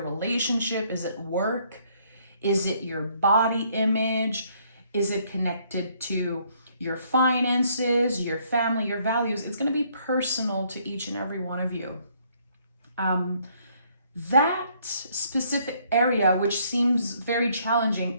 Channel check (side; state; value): both; inverted; correlation -0.66